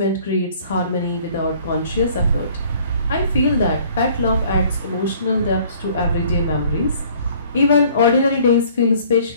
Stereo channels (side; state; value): both; inverted; correlation -0.55